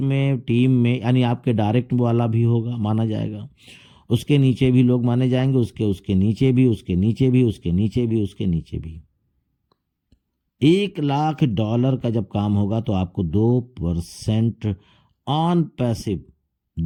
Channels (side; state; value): both; identical; correlation 1.00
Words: में यानी आपके डायरेक्ट वाला भी होगा माना जाएगा, उसके नीचे भी लोग माने जाएंगे, उसके नीचे भी, उसके नीचे भी, उसके नीचे भी, उसके नीचे भी, $1,00,000 का जब काम होगा तो आपको 2% ऑन पैसिव